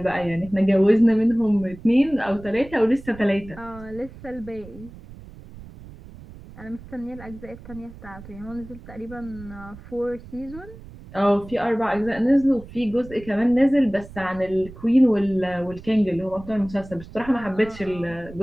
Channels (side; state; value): right; noise; rumble, 17 dB below the sound